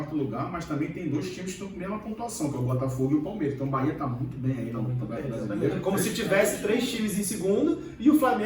lugar, mas também tem 2 times que estão com a mesma pontuação, que é o Botafogo e o Palmeiras. Então o Bahia está muito bem aí no Campeonato Brasileiro. Como se tivesse 3 times em segundo e o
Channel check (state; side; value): identical; both; correlation 1.00